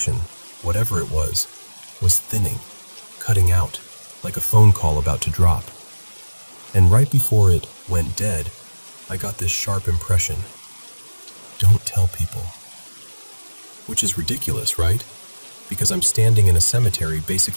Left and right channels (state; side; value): inverted; both; correlation -1.00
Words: whatever it was thinning, cutting out, like a phone call about to drop. And right before it went dead, I got this sharp impression. Don't tell people. Which is ridiculous, right? Because I'm standing in a cemetery